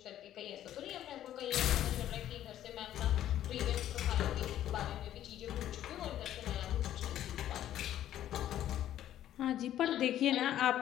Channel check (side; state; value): right; quieter; 12.0 dB